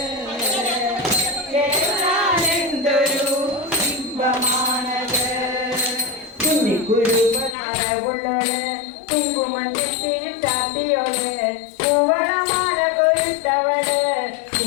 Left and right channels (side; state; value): right; drops out; at 7.6 s